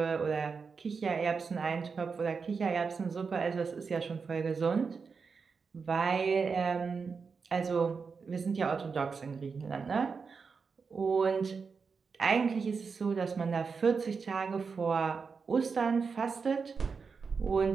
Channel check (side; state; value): left; quieter; 5.3 dB